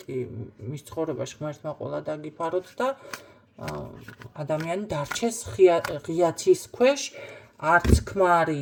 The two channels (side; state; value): both; identical; correlation 1.00